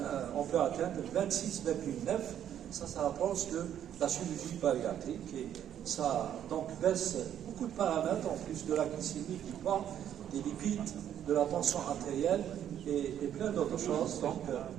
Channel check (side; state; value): left; quieter; 10.1 dB